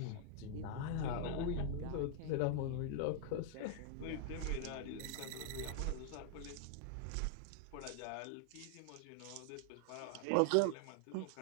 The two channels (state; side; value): different; both; correlation 0.00